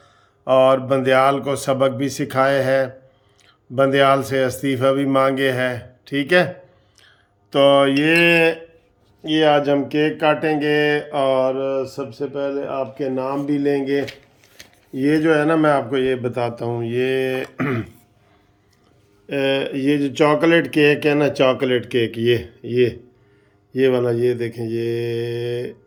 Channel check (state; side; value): identical; both; correlation 1.00